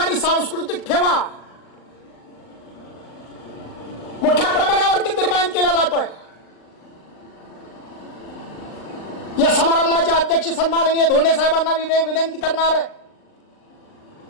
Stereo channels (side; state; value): right; late; 39 ms